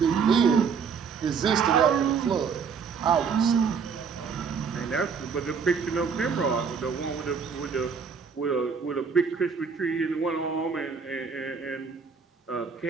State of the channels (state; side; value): quieter; left; 5.9 dB